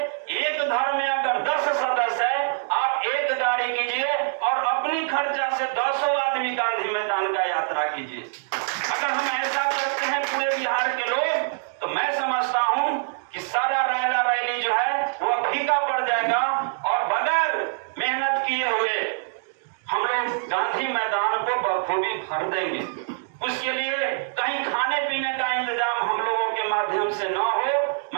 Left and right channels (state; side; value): silent; left; digital silence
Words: एक घर में अगर 10 सदस्य है, आप एक गाड़ी कीजिए और अपनी खर्चा से 10 आदमी गांधी मैदान का यात्रा कीजिए। अगर हम ऐसा करते हैं पूरे बिहार के लोग, तो मैं समझता हूं कि सारा रैला रैली जो है वो फीका पड़ जाएगा और बगैर मेहनत किए हुए हम लोग गांधी मैदान को बखूबी भर देंगे। उसके लिए कहीं खाने पीने का इंतजाम हम लोगों के माध्यम से न हो।